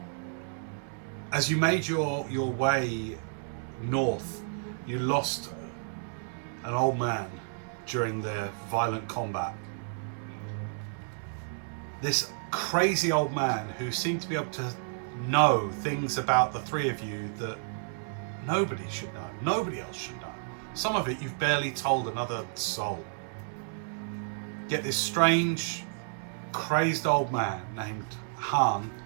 as you made your way north, you lost an old man during the violent combat. this crazy old man who seemed to be able to know things about the three of you that nobody should know, nobody else should know. Some of it you've barely told another soul. Yet this strange, crazed old man named Han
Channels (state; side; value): silent; left; digital silence